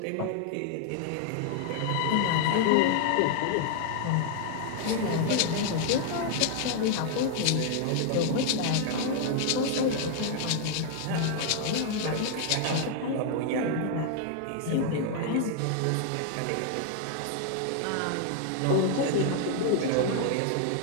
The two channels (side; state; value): both; different; correlation 0.00